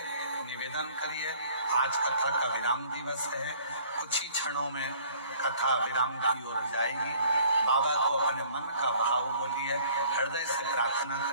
निवेदन करिए। आज कथा का विराम दिवस है, कुछ ही क्षणों में कथा विराम की ओर जाएगी। बाबा को अपने मन का भाव बोलिए, हृदय से प्रार्थना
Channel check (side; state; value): both; inverted; correlation -0.55